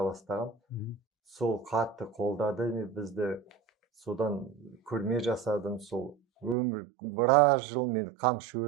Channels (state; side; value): drops out; left; at 6.6 s